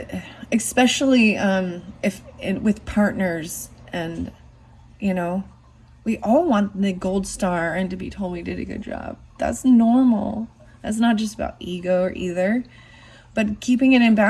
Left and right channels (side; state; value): both; identical; correlation 1.00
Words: especially with partners, and you know, we all want the gold star and to be told we did a good job. That's normal. That's not just about ego or either, but keeping it in